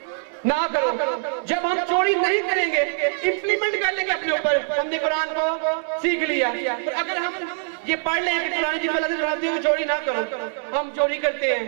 ना करो। जब हम चोरी नहीं करेंगे, इंप्लीमेंट कर लेंगे अपने ऊपर, हमने कुरान को सीख लिया। अगर हम ये पढ़ लें कि कुरान मजीद में अल्लाह ताला फरमाती है चोरी ना करो, हम चोरी करते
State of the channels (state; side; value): silent; left; digital silence